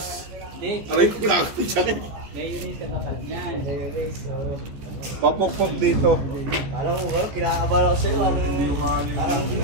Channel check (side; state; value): left; late; 14 ms